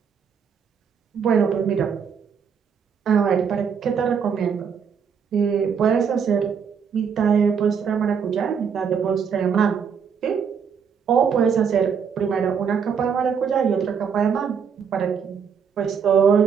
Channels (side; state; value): left; quieter; 6.8 dB